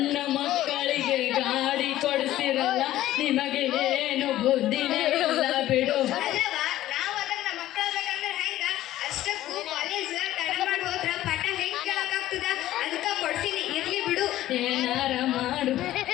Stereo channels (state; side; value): quieter; right; 14.3 dB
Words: ಮಕ್ಕಳಿಗೆ ಗಾಡಿ ಕೊಡಿಸಿರಲ್ಲ, ನಿಮಗೆ ಏನು ಬುದ್ಧಿನೇ ಇಲ್ಲ ಬಿಡು. ಅಲ್ಲವಾ, ನಾವು ಅದನ್ನ ಮಕ್ಕಳ ಬೇಕಂದ್ರೆ ಹೆಂಗ ಗೊತ್ತಾಗ್ತದ ಅದಕ್ಕ ಕೊಡ್ತೀನಿ ಇರ್ಲಿ ಬಿಡು. ಏನಾರ ಮಾಡು.